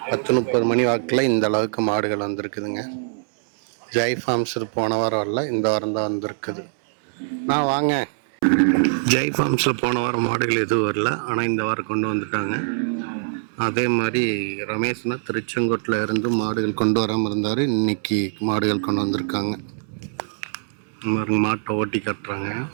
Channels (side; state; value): left; silent; 64 dB below the other